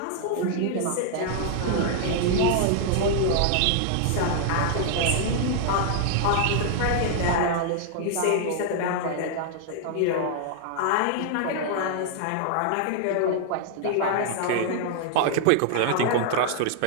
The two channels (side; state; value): both; different; correlation 0.00